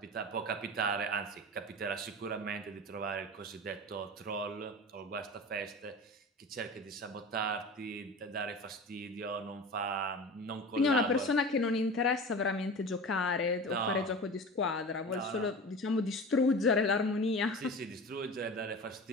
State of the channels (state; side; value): normal; both; correlation 0.33